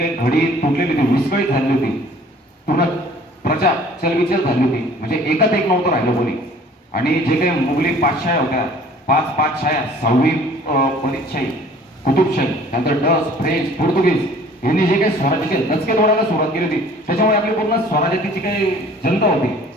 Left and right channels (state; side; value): normal; both; correlation 0.52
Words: घडी तुटलेली होती, विस्कळीत झाली होती, पूर्ण प्रजा चलबिचल झाली होती, म्हणजे एकात एक नव्हतं राहिलं कोणी. आणि जे काही मुघली पातशाह्या होत्या, 5 पातशाह्या, 6वी बरीदशाही, कुतुबशाही, त्यानंतर डच, फ्रेंच, पोर्तुगीज यांनी जे काही स्वराज्याचे दचके तोडायला सुरुवात केली होती, त्याच्यामुळे आपली पूर्ण स्वराज्याची जी काही जनता होती